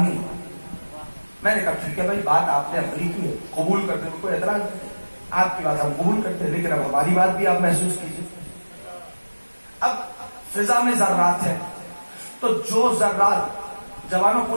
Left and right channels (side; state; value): both; inverted; correlation -1.00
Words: ہے. میں نے کہا ٹھیک ہے بھائی، بات آپ نے عملی کی ہے، قبول کرتے ہیں، کوئی اعتراض نہیں، آپ کی بات ہم قبول کرتے ہیں، لیکن اب ہماری بات بھی آپ محسوس کیجیے. اب فضا میں ذرات ہیں، تو جو ذرات، جوانوں